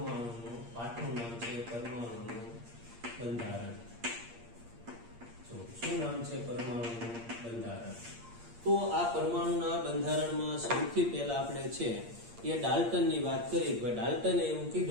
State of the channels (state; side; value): late; left; 8.6 ms